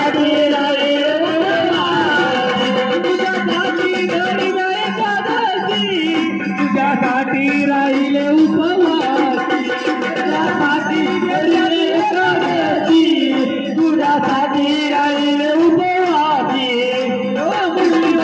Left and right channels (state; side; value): identical; both; correlation 1.00